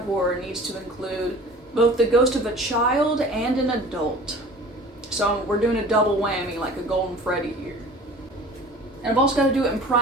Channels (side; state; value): both; normal; correlation 0.43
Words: horror needs to include both the ghost of a child and an adult. So we're doing a double whammy like a Golden Freddy here. And I've also got to do it in